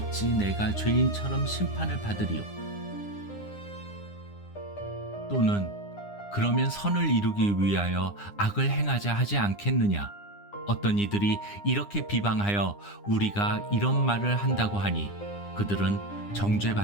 내가 죄인처럼 심판을 받으리요? 또는 그러면 선을 이루기 위하여 악을 행하자 하지 않겠느냐? 어떤 이들이 이렇게 비방하여 우리가 이런 말을 한다고 하니 그들은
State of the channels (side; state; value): right; late; 9.8 ms